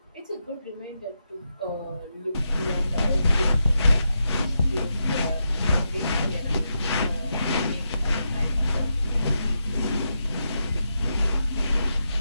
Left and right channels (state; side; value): inverted; both; correlation -0.85